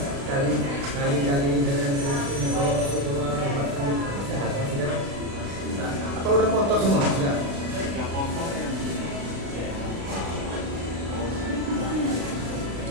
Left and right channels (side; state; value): left; late; 36 ms